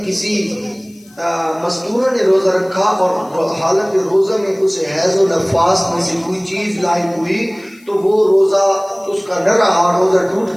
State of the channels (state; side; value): noise; left; hiss, 28 dB below the sound